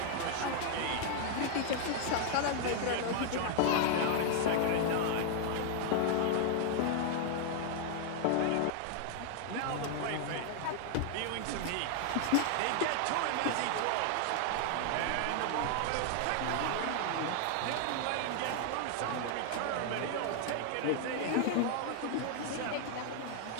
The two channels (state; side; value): different; both; correlation 0.00